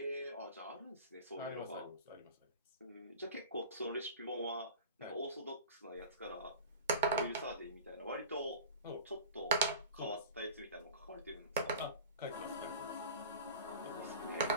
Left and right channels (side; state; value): both; inverted; correlation -0.37